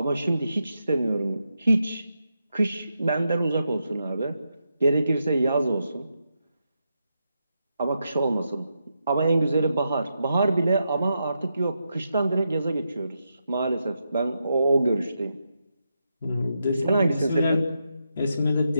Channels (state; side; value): inverted; both; correlation -0.85